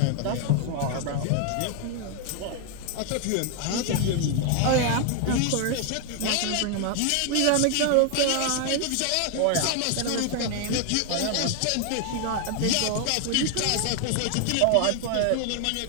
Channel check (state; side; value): different; both; correlation 0.00